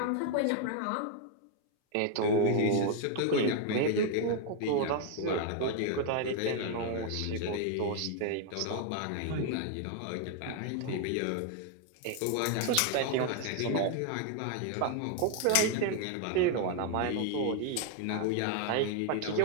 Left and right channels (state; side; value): different; both; correlation 0.00